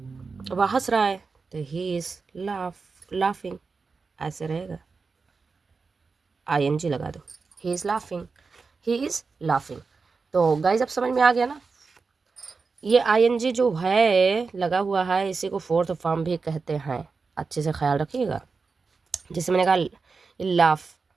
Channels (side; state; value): left; quieter; 4.6 dB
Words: वह हंस रहा है, तो ही इज लाफिंग, ऐसे रहेगा, आईएनजी लगा दो, he is laughing, he is laughing. तो गाइज अब समझ में आ गया ना। ये आईएनजी जो है लगा हुआ है, इसी को फोर्थ फॉर्म भी कहते हैं, अच्छे से ख्याल रखिएगा। जैसे मैंने कहा